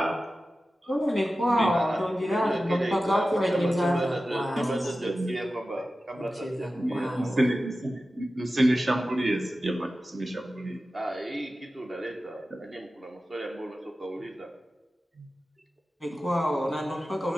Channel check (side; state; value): both; normal; correlation 0.94